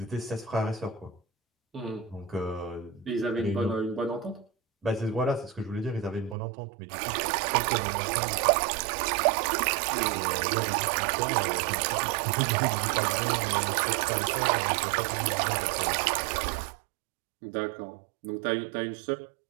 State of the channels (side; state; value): left; drops out; at 6.4 s